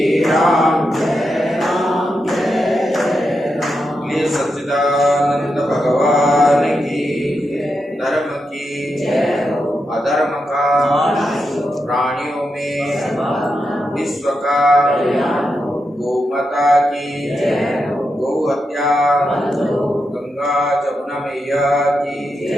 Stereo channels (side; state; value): both; normal; correlation 0.86